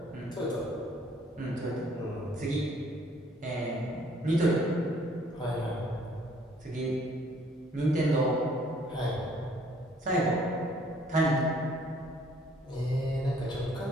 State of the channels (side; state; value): both; normal; correlation 0.61